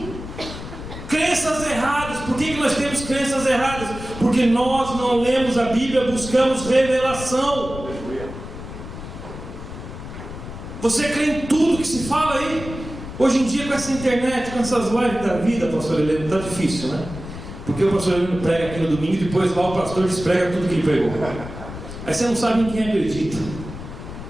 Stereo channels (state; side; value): noise; left; rumble, 11 dB below the sound